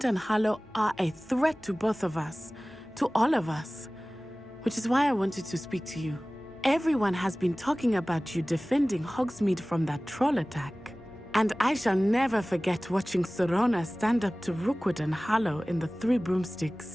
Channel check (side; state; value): both; normal; correlation 0.98